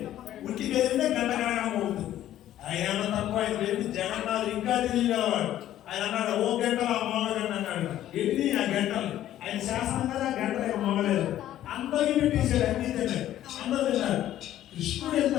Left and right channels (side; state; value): right; quieter; 12.6 dB